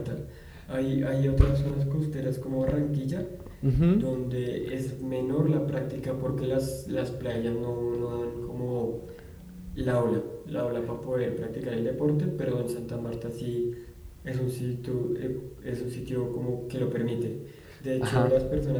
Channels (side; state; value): both; identical; correlation 1.00